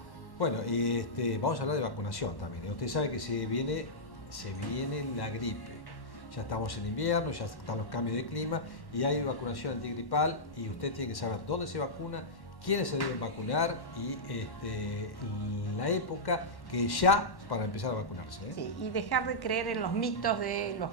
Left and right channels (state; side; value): late; right; 1.1 ms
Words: Bueno, y vamos a hablar de vacunación también. Usted sabe que se viene la gripe. Ya estamos en invierno, ya están los cambios de clima y hay vacunación antigripal y usted tiene que saber dónde se vacuna, quiénes se deben vacunar y la época que ya para empezar a vacunarse. Sí, y dejar de creer en los mitos de los